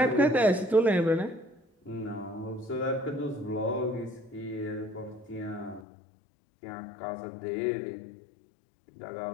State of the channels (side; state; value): right; drops out; at 5.9 s